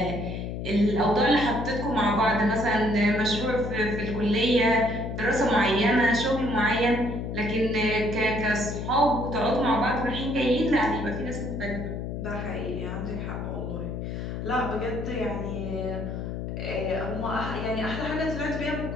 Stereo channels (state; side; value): noise; left; hum, 5 dB below the sound